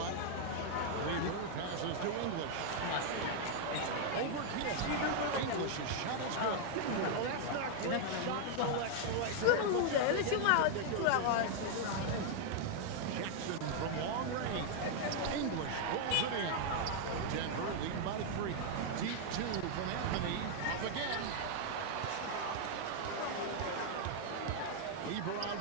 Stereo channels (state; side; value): different; both; correlation 0.00